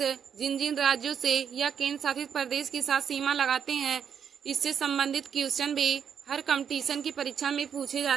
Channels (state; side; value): quieter; left; 7.7 dB